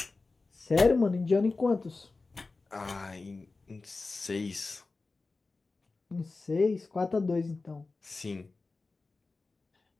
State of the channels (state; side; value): quieter; right; 3.7 dB